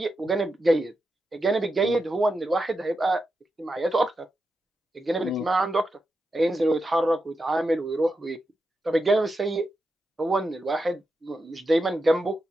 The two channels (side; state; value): both; normal; correlation 0.88